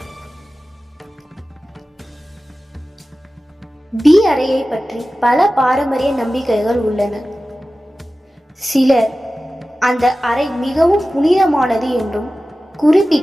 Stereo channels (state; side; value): normal; both; correlation 0.95